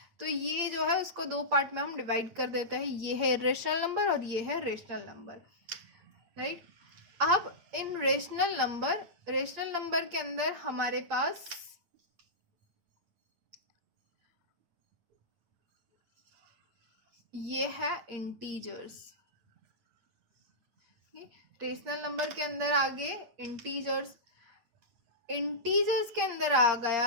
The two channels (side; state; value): left; late; 8.6 ms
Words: तो ये जो है उसको दो पार्ट में हम डिवाइड कर देते हैं, ये है इर्रेशनल नंबर और ये है रेशनल नंबर, राइट। अब इन रेशनल नंबर के अंदर हमारे पास ये है इंटीजर्स। रेशनल नंबर के अंदर आगे इंटीजर्स के अंदर आ